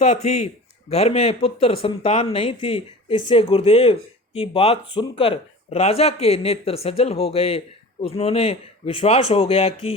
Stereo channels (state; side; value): normal; both; correlation 0.37